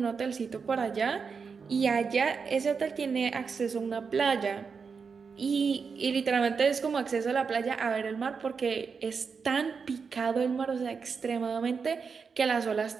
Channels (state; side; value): quieter; left; 5.5 dB